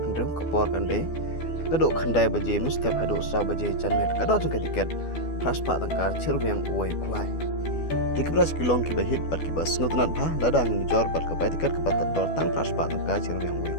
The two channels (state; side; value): late; right; 12 ms